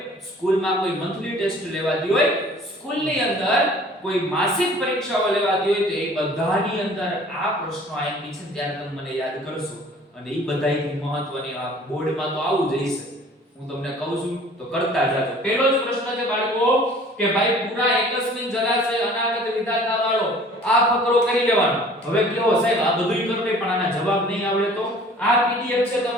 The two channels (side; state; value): both; normal; correlation 0.50